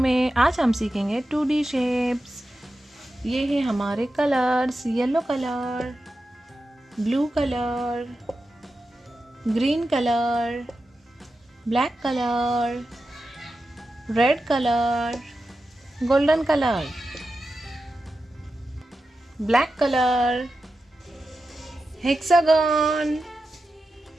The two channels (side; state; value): both; normal; correlation 0.91